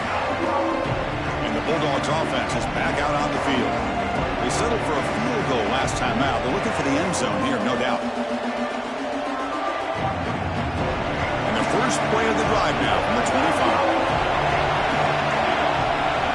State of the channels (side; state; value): both; identical; correlation 1.00